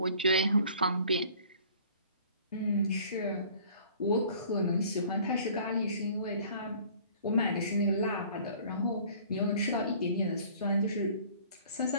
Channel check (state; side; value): inverted; both; correlation -0.51